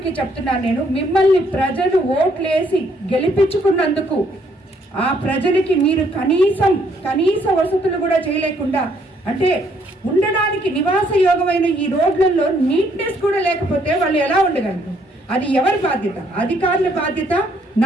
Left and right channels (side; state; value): both; normal; correlation 0.68